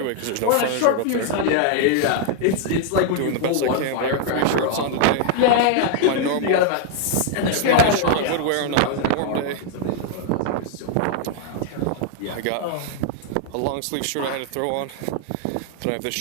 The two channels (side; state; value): both; different; correlation 0.00